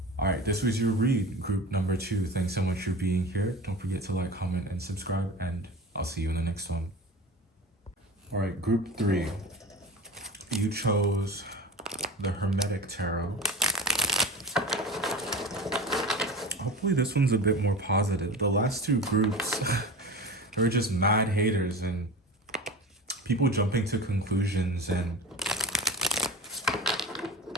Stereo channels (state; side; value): normal; both; correlation 0.32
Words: All right, this was your read, group number 2. Thanks so much for being here. Don't forget to like, comment, and subscribe, and I'll see you in the next one. All right, group 3. You chose the Hermetic Tarot. Hopefully this one's a bit more positive. The last 2 groups, they were just mad haters and people jumping to conclusions and